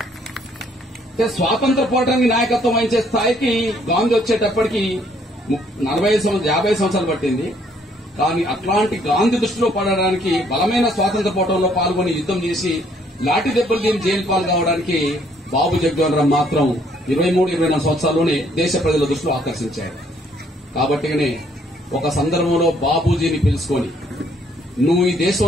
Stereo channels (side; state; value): both; normal; correlation 0.65